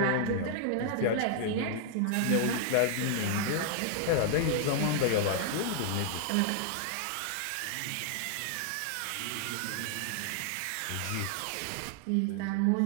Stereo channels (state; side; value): different; both; correlation -0.01